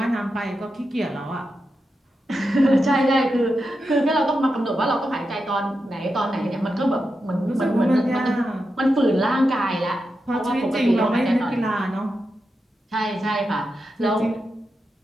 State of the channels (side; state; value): both; normal; correlation 0.88